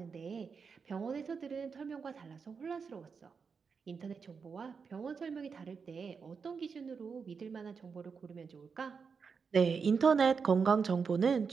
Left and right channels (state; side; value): quieter; left; 5.6 dB